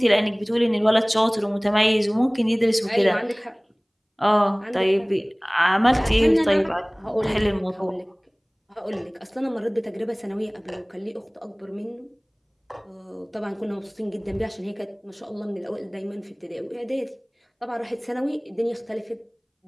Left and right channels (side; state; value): both; identical; correlation 1.00